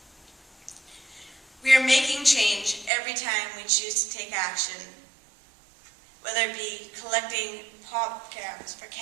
We are making change every time we choose to take action, whether it be collecting pop cans for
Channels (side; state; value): left; drops out; at 2.9 s